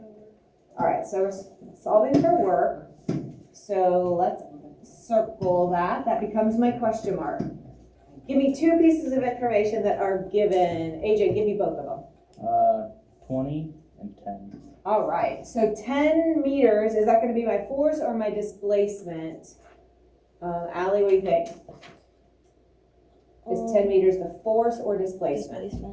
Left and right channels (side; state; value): both; identical; correlation 1.00